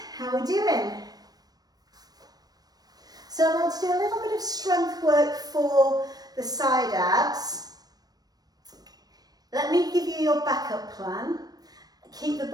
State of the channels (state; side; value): late; left; 0.19 ms